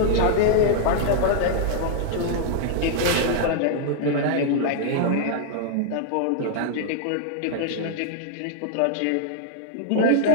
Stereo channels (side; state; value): both; different; correlation -0.01